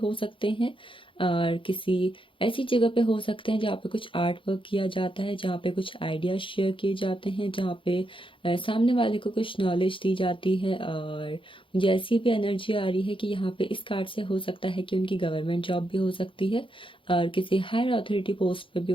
सकते हैं, और किसी ऐसी जगह पे हो सकते हैं जहाँ पे कुछ आर्ट वर्क किया जाता है, जहाँ पे कुछ आइडियाज शेयर किए जाते हैं, जहाँ पे सामने वाले को कुछ नॉलेज दी जाती है। और मुझे ऐसी भी एनर्जी आ रही है कि यहाँ पे इस कार्ड से हो सकता है कि उनकी गवर्नमेंट जॉब भी हो सकती है, और किसी हायर अथॉरिटी पोस्ट पे भी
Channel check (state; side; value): late; right; 0.25 ms